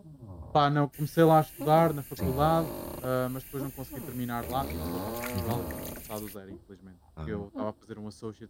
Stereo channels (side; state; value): both; identical; correlation 1.00